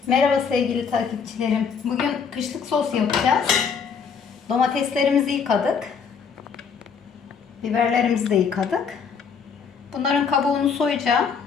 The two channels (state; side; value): quieter; right; 6.2 dB